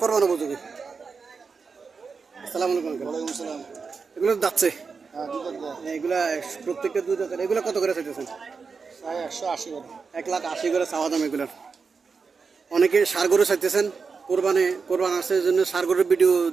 কোরবান উপযোগী। আসসালামু আলাইকুম আঙ্কেল। এগুলো যাচ্ছে, এগুলা প্রত্যেকটা দুধ আছে। এগুলো কত করে চাইতেছেন? 1,80,000 করে চাওয়া দাম এগুলোর। অনেকে সার গরু চাইতেছেন, কোরবান আসছে এই জন্য সার গরুর ভিডিও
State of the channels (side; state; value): left; quieter; 5.1 dB